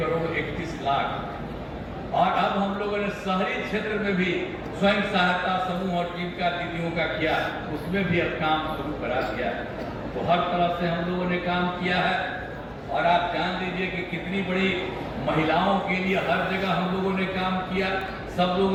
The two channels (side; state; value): both; identical; correlation 1.00